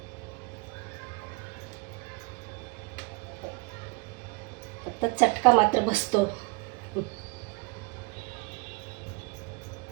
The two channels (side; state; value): left; quieter; 28.2 dB